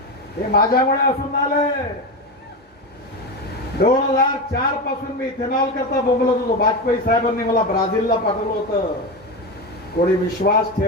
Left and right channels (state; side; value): normal; both; correlation 0.18